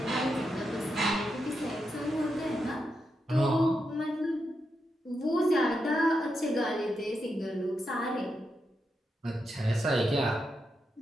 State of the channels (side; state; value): both; normal; correlation 0.85